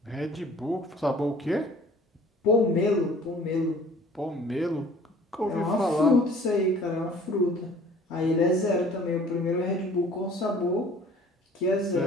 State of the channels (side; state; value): both; normal; correlation 0.51